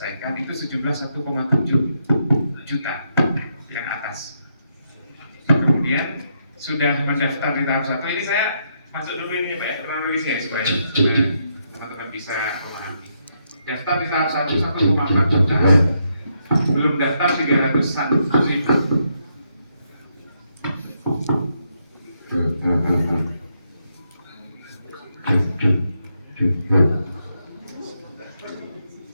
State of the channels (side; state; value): both; inverted; correlation -0.78